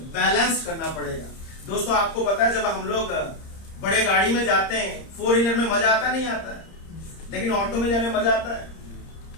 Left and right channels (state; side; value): late; right; 30 ms